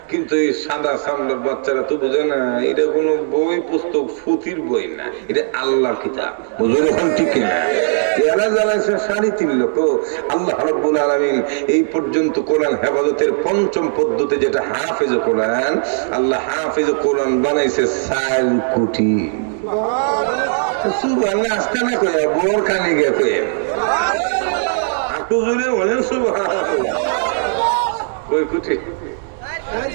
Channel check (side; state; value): left; silent; digital silence